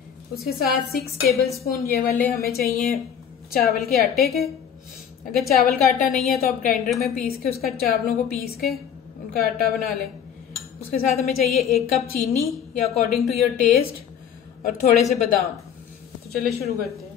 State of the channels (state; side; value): quieter; right; 8.4 dB